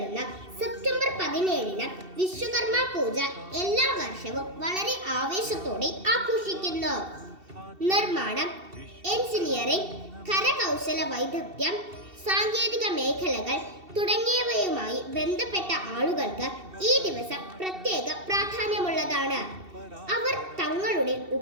സെപ്റ്റംബർ 17-ന് വിശ്വകർമ്മ പൂജ എല്ലാ വർഷവും വളരെ ആവേശത്തോടെ ആഘോഷിക്കുന്നു. നിർമ്മാണം, എഞ്ചിനീയറിംഗ്, കരകൗശല വൈദഗ്ധ്യം, സാങ്കേതിക മേഖലകൾ തുടങ്ങിയവയുമായി ബന്ധപ്പെട്ട ആളുകൾക്ക് ഈ ദിവസം പ്രത്യേക പ്രാധാന്യമുള്ളതാണ്. അവർ തങ്ങളുടെ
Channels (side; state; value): left; late; 2.7 ms